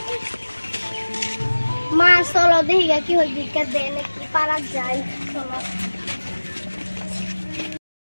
মা চলো দেখি কি হয় ভিক্ষা দেয় নাকি পারা যায় চলো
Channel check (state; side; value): inverted; both; correlation -1.00